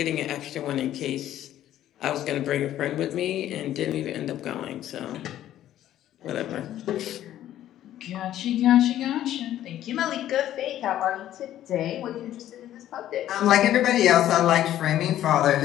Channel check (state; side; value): quieter; right; 12.4 dB